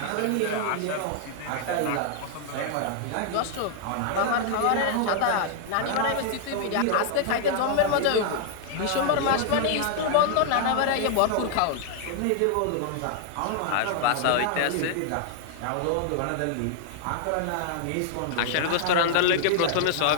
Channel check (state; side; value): different; both; correlation 0.00